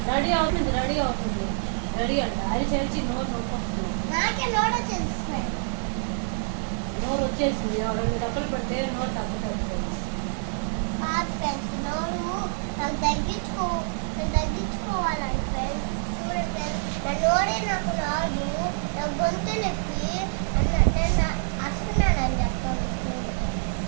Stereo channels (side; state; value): left; silent; digital silence